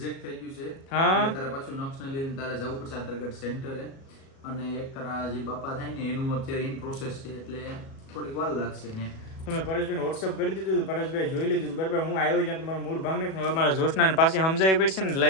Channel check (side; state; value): right; late; 37 ms